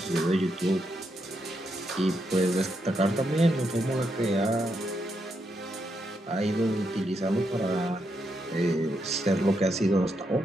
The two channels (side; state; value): both; normal; correlation 0.81